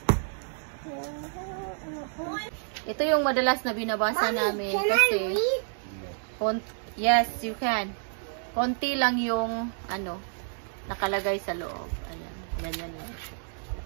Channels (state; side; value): silent; left; digital silence